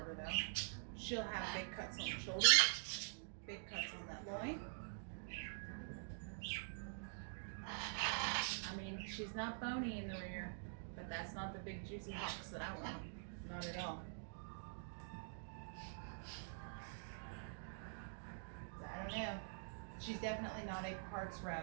though. She'll have big cuts on the shoulder, big cuts on that loin. I mean, she's not bony in the rear, but that's not the big juicy hocks that I want. Not at all. So I don't know. She's definitely not a parts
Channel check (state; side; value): silent; left; digital silence